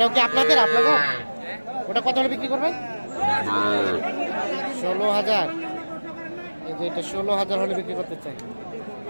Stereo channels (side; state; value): both; inverted; correlation -1.00